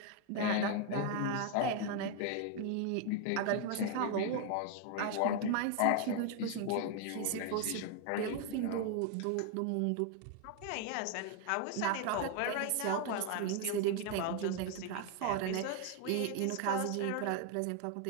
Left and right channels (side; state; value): both; different; correlation 0.00